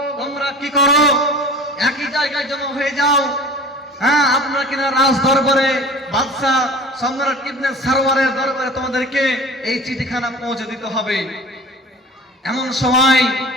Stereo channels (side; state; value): both; normal; correlation 0.40